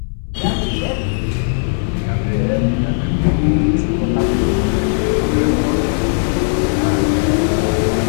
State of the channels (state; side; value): silent; right; digital silence